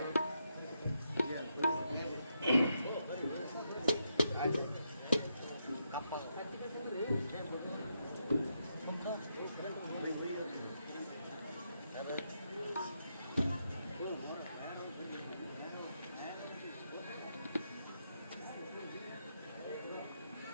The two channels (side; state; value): both; inverted; correlation -0.81